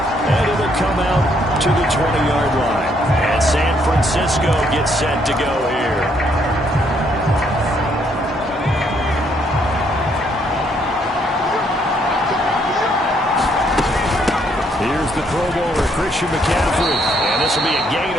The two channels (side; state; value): both; normal; correlation 0.70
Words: and it'll come out to the 20-yard line. And San Francisco gets set to go here. Here's the Pro Bowler, Christian McCaffrey. And this will be a gain